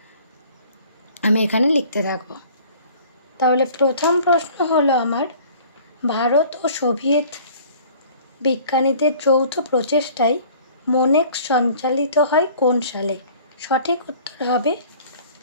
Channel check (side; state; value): both; inverted; correlation -0.50